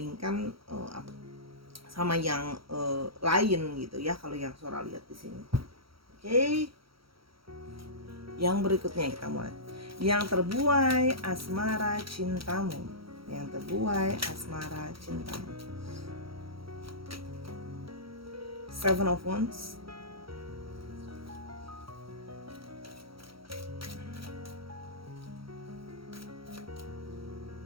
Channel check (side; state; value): left; late; 0.75 ms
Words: sama yang lain gitu ya, kalau yang Sora lihat di sini. Oke. Yang berikutnya kita mulai. Yang terbuai asmara cintamu. Yang terbuai asmara cintamu. Seven of Wands.